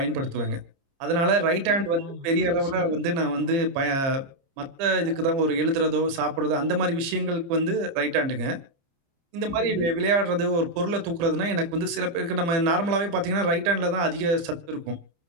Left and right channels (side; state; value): left; late; 29 ms